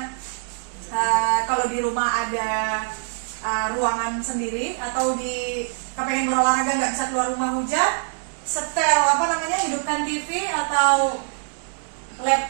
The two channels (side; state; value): left; silent; digital silence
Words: kalau di rumah ada ruangan sendiri, atau kepengen berolahraga nggak bisa keluar rumah hujan, setel hidupkan TV atau